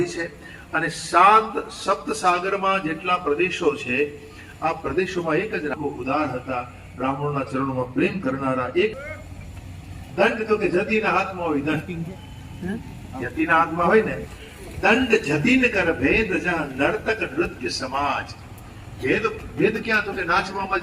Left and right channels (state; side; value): identical; both; correlation 1.00